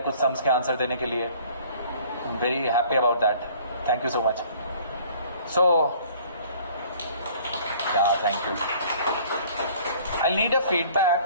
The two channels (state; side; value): inverted; both; correlation -0.54